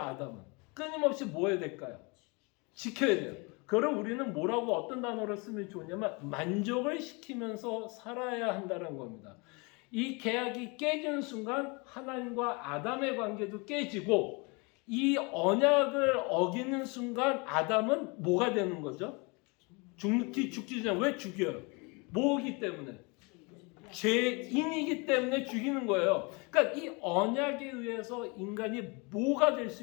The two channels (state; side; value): quieter; right; 29.5 dB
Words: 끊임없이 뭐 해야 될까요? 지켜야 돼요. 그걸 우리는 뭐라고 어떤 단어를 쓰면 좋냐면 만족을 시키면서 살아야 한다는 겁니다. 이 계약이 깨지는 순간 하나님과 아담의 관계도 깨지고 이 언약을 어기는 순간 아담은 뭐가 되는 거죠? 죽기 전에 왜 죽여요? 뭐기 때문에? 죄인이기 때문에 죽이는 거예요. 그러니까 이 언약에 의해서 인간이 뭐가 될 수